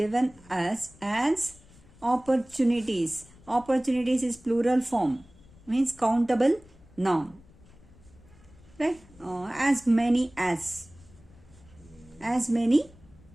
us as opportunities. Opportunities is plural form, means countable noun. Right? As many as. As many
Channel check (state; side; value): noise; left; rumble, 25 dB below the sound